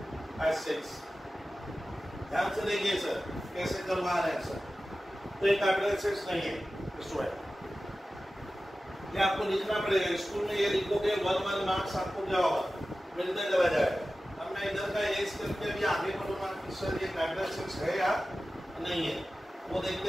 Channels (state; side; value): normal; both; correlation 0.95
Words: एसेट्स। ध्यान से देखिए सर कैसे करवा रहे हैं सर, तो ये कैपिटल एसेट्स नहीं है स्टूडेंट। ये आपको लिखना पड़ेगा, स्कूल में ये लिखोगे 1 मार्क्स आपको क्या होगा, मिलते चला जाएगा। अब मैं इधर का एज करके अभी आगे बढ़ूंगा कि सर ये कैपिटल एसेट्स है या नहीं है, वो